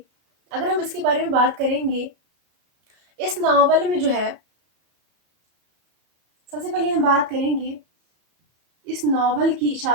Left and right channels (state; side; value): late; left; 34 ms